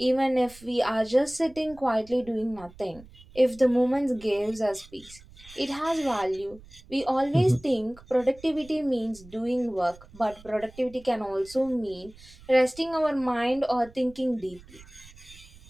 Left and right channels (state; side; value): noise; right; rumble, 22 dB below the sound